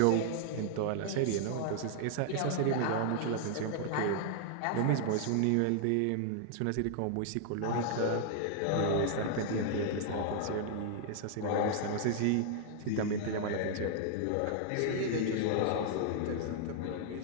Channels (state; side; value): different; both; correlation -0.01